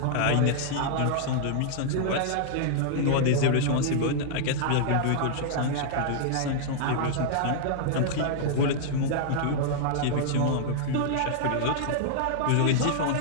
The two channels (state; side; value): different; both; correlation -0.01